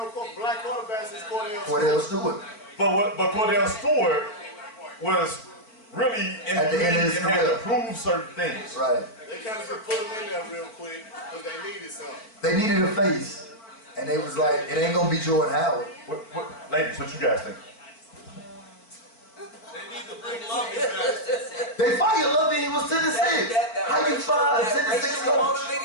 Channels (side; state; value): right; late; 4.5 ms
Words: black quarterbacks since Cordell Stewart. But Cordell Stewart was really in at the end of his career, had to prove certain things. Right. They kind of just put him in there real quick because they needed something. They needed a face. And they was like, it ain't gonna be Jordan Howard. Ladies, what you guys think? They need to bring Lovey back. They fired Lovey, he was 10-6. How you fire a 10-6 coach?